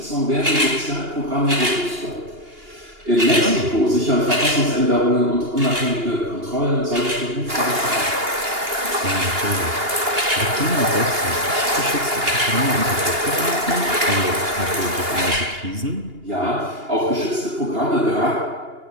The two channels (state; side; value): late; left; 2.8 ms